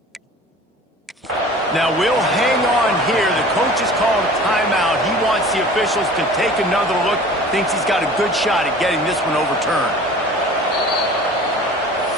Now we'll hang on here. The coach has called a timeout. He wants the officials to take another look. Thinks he's got a good shot at getting this one overturned.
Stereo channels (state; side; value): normal; both; correlation 0.44